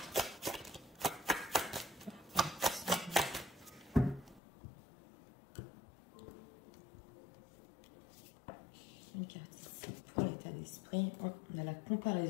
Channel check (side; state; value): right; drops out; at 4.4 s